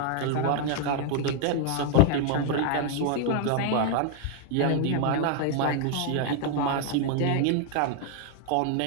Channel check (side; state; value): both; different; correlation 0.00